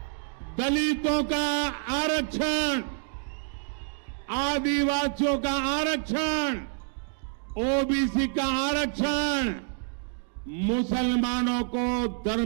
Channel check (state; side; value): silent; left; 59 dB below the other